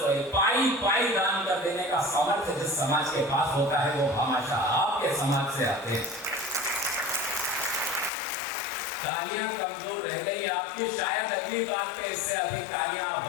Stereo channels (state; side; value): drops out; right; at 8.1 s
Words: पाई पाई दान कर देने का सामर्थ्य जिस समाज के पास होता है वो हमेशा आपके समाज से आते हैं। तालियां कमजोर रह गई आपकी, शायद अगली बात पे इससे अधिक तालियां